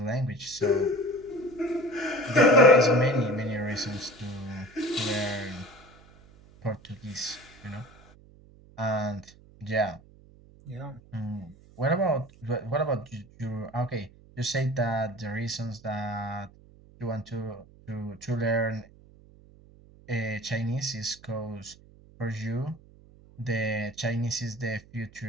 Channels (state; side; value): noise; right; hum, 24 dB below the sound